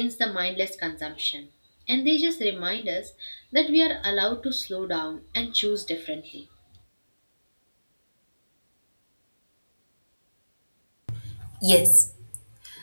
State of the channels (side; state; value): both; inverted; correlation -1.00